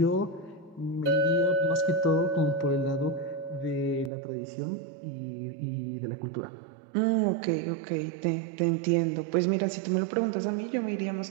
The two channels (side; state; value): left; drops out; at 4.1 s